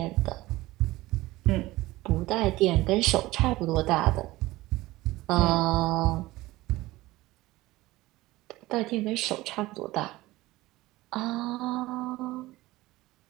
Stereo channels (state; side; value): quieter; left; 18.5 dB